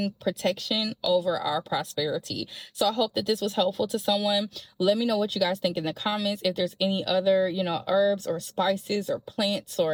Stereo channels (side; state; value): both; identical; correlation 1.00